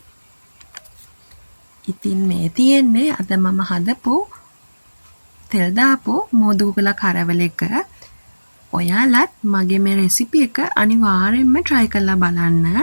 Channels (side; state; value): both; inverted; correlation -1.00